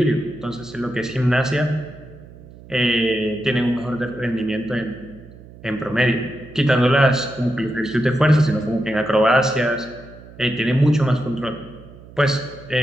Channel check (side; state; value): right; noise; hum, 20 dB below the sound